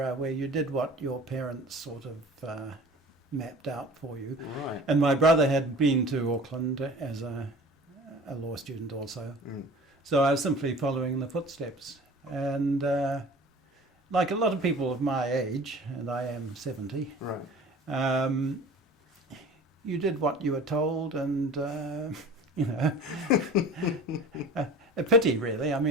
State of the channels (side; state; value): both; normal; correlation 0.42